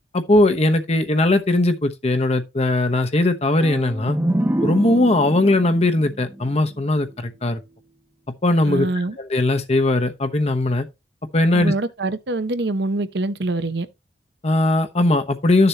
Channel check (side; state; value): both; normal; correlation 0.71